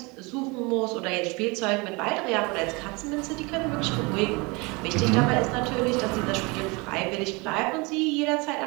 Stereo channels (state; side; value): quieter; left; 27.1 dB